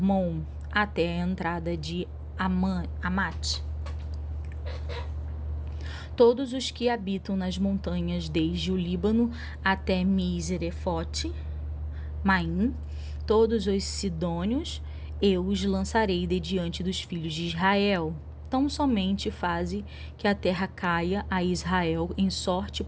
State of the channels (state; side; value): identical; both; correlation 1.00